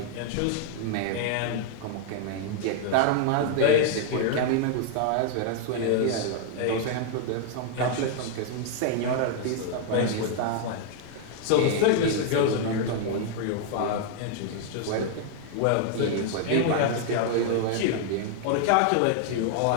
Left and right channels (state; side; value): different; both; correlation 0.00